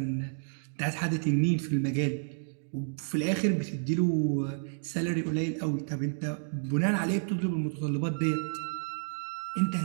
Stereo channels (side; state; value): left; silent; digital silence